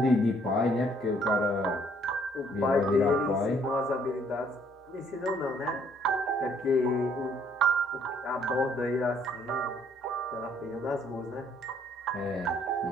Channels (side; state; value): both; normal; correlation 0.64